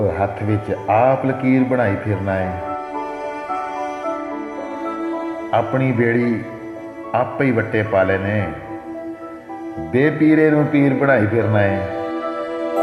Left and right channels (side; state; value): both; identical; correlation 1.00